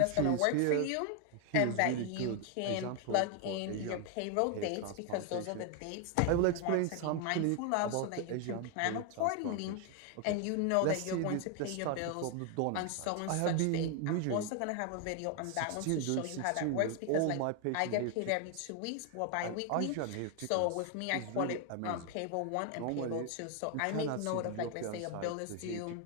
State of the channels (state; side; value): different; both; correlation 0.01